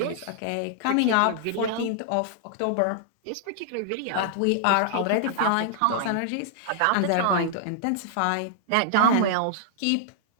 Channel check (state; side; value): different; both; correlation -0.01